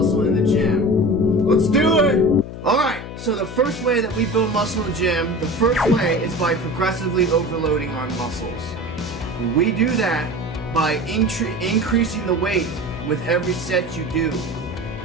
in the gym. Let's do it! Alright, so the first way that we build muscle in the gym, the first way is by progressively overloading our muscles. We do that by increasing the weight with every set you do.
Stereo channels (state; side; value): noise; left; hum, 10 dB below the sound